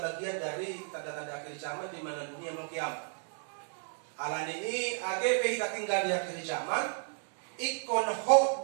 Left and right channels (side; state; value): left; silent; 56 dB below the other